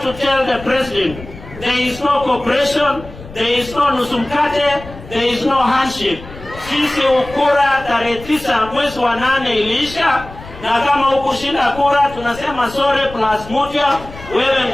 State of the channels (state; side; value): noise; left; rumble, 16 dB below the sound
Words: to tell the president, there is no cooperation, there is no nusumkate, there is no handshake. Sisi ukura tarehe 9 mwezi wa 8 iliisha, na kama hukushinda kura tunasema sorry plus moja, wewe